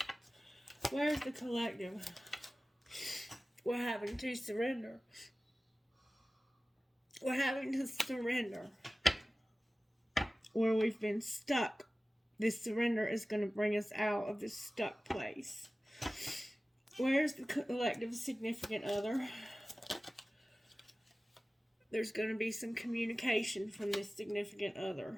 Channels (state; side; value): normal; both; correlation 0.97